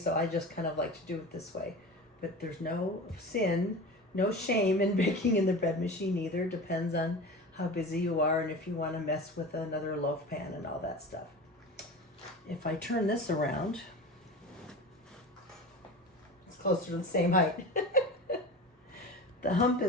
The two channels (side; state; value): both; normal; correlation 0.31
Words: I just kind of like to do it this way. But there's no sin, no shame in baking in the bread machine either. Depends on how busy you are and if you want to mess with another loaf pan and all that stuff. If I turn this around, it's closer to the same height. The hump